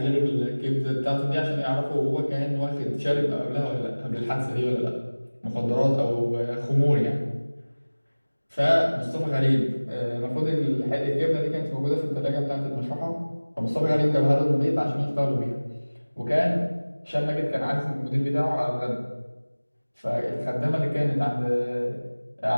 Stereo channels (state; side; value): inverted; both; correlation -1.00